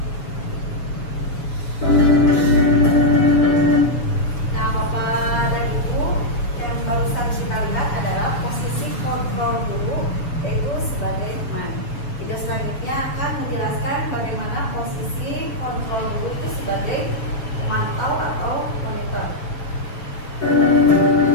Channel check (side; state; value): right; late; 7.1 ms